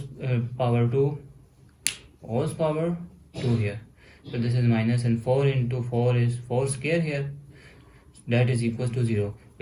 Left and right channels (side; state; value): both; identical; correlation 1.00